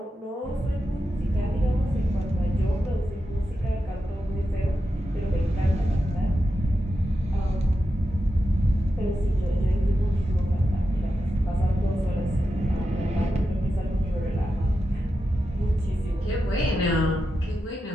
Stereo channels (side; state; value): both; normal; correlation 0.89